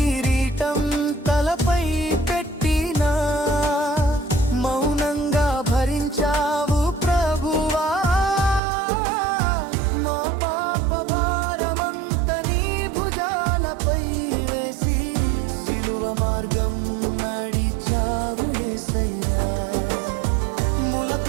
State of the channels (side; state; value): left; drops out; at 8.6 s